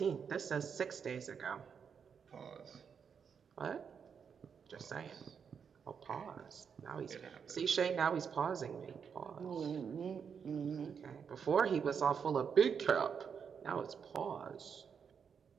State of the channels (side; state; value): left; quieter; 6.8 dB